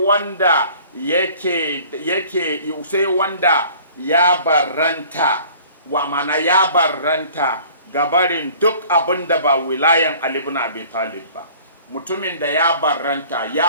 sai wanda ya barranta, wa mana ya barranta gabarin duk abin da ba wilayan Ali ibn Abi Talib ba. Mutumin da ya barranta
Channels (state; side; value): inverted; both; correlation -0.50